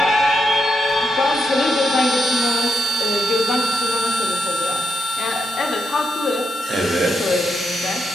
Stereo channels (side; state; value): both; normal; correlation 0.82